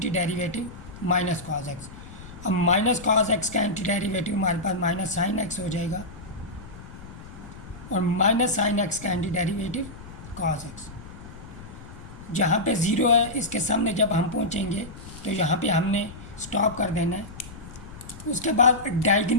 derivative minus cos x. अब माइनस कॉस एक्स का एंटी डेरिवेटिव हमारे पास माइनस साइन एक्स हो जाएगा और माइनस साइन एक्स का एंटी डेरिवेटिव कॉस एक्स। जहाँ पे 0 है इसके सामने जब हम पहुँचेंगे तो यहाँ पे हमने स्टॉप कर देना है। उसके बाद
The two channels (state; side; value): noise; left; rumble, 15 dB below the sound